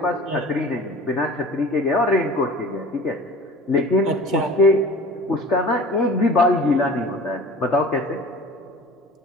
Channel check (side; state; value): both; normal; correlation 0.42